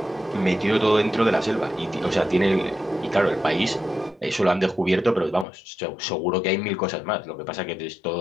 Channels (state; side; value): drops out; right; at 5.5 s